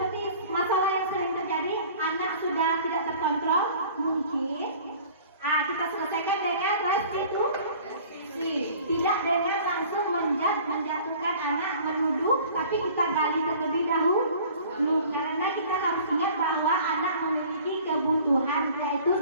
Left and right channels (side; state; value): both; inverted; correlation -0.48